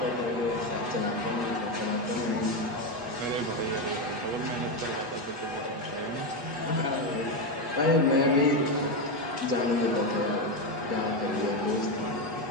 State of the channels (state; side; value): late; left; 8.2 ms